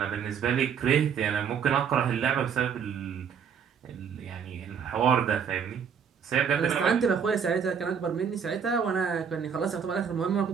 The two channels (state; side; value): quieter; left; 7.1 dB